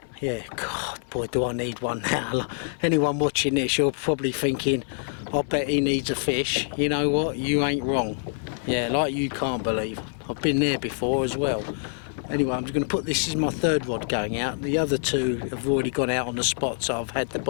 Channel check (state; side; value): silent; right; 61 dB below the other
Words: yeah, God, boy, do I need one now. Anyone watching this, you're probably thinking, I bet he needs a fish. You know what? You ain't wrong. Yeah, like you can't believe. I've been there before as well. Anyway, I'm just going to put, this is my third rod going out. The other two have already gone out on the spots I've had the